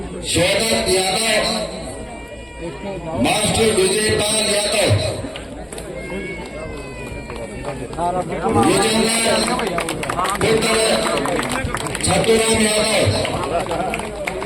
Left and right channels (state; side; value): identical; both; correlation 1.00